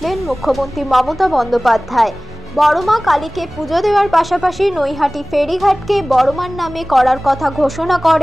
মুখ্যমন্ত্রী মমতা বন্দ্যোপাধ্যায়। বড়মা কালীকে পুজো দেওয়ার পাশাপাশি নৈহাটি ফেরিঘাটকে বড়মার নামে করার কথা ঘোষণা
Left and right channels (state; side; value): normal; both; correlation 0.98